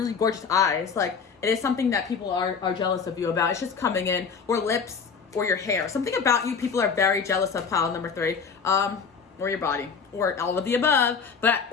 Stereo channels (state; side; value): quieter; right; 5.8 dB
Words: gorgeous eyes. Like, it is something that people are jealous of you about. It's just coming in, or lips, or your hair. Something about you people are very jealous of, pile number 3. Or your body, or all of the above,